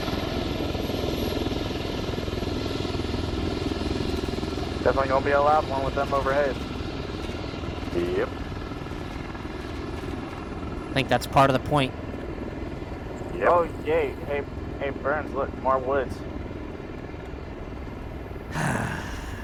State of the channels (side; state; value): both; identical; correlation 1.00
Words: Definitely gonna be a loud one with them overhead. Yep. I think that's part of the point. Yep. Oh, yay. Hey, Burns, look, more woods.